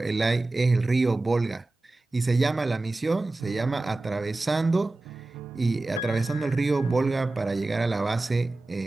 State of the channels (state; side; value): quieter; left; 3.0 dB